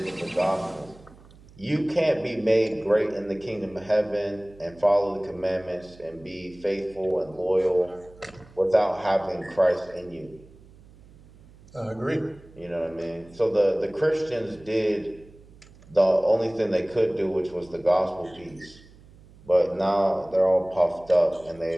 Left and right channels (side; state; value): right; noise; hum, 24 dB below the sound